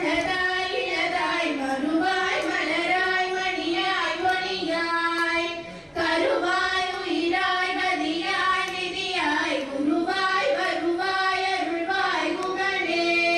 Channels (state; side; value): identical; both; correlation 1.00